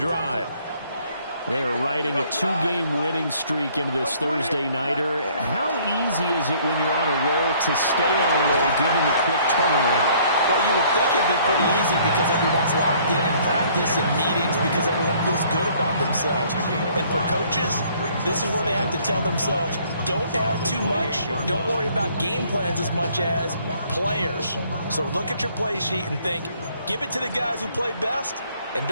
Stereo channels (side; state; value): both; inverted; correlation -0.60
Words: They're riding a 2-game winning streak into this Thursday nighter. How easy is it when you're on a roll to stay on a roll given the quick turnaround? Well, you would think it'd be pretty easy because everyone's locked in practice and meetings because everyone feels good about themselves. And for coaches, this is where they have to tell themselves, don't add too much. Don't worry about game plans as much as players. So look at your play sheet and think, give it to the guys who play best, and